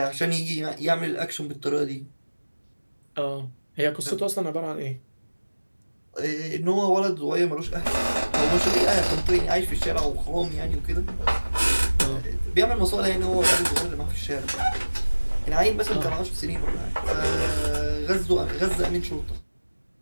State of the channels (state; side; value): inverted; both; correlation -1.00